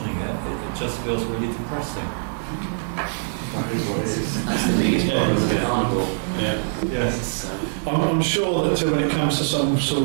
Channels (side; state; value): left; silent; digital silence